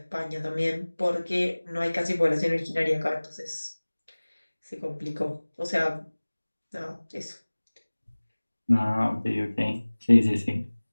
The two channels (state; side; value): inverted; both; correlation -1.00